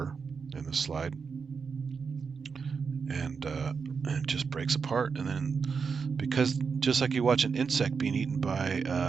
in the slide, and it just breaks apart. And then, because just like you watch an insect being eaten by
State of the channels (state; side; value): quieter; left; 5.5 dB